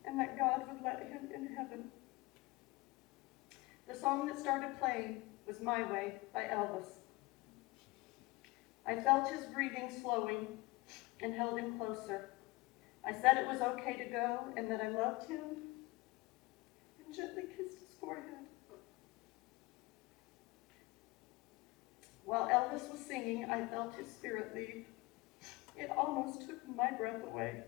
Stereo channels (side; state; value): right; quieter; 23.1 dB